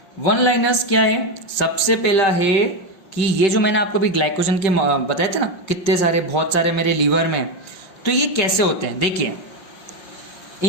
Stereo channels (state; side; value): late; right; 5.6 ms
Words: वन लाइनर्स क्या है, सबसे पहला है कि ये जो मैंने आपको भी ग्लाइकोजन के बताए थे ना, कितने सारे, बहुत सारे मेरे लीवर में, तो ये कैसे होते हैं। देखिए